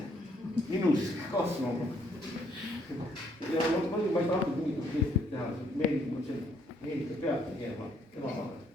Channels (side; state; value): both; normal; correlation 0.68